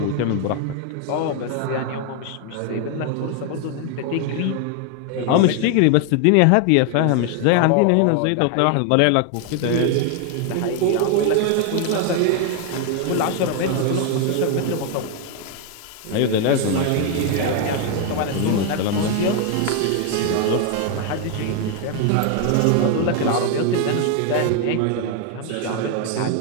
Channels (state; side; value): different; both; correlation 0.00